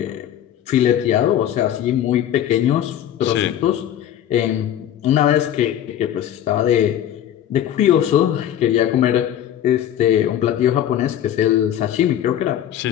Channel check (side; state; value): right; quieter; 10.9 dB